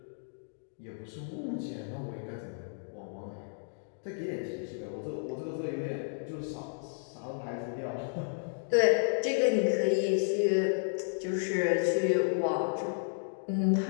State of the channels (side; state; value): right; silent; digital silence